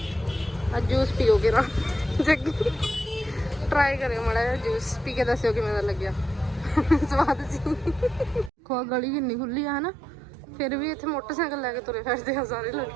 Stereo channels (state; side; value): drops out; left; at 8.5 s